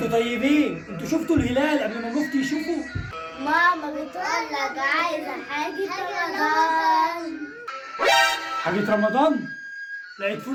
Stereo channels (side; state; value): both; identical; correlation 1.00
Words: طيبين، انتوا شفتوا الهلال قبل ما المفتي يشوفه؟ ماما بتقول لك عايزة حاجة رمضان. حاجة رمضان؟ لا ادفوا